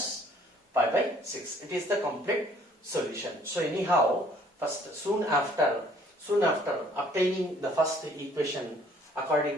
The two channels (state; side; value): normal; both; correlation 0.59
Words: pi by 6. It is the complete solution. So anyhow, soon after obtaining the first equation